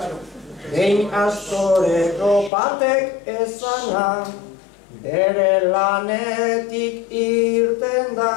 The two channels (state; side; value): drops out; right; at 2.5 s